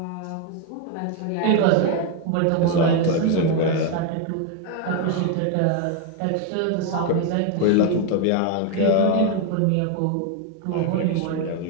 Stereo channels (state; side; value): different; both; correlation 0.01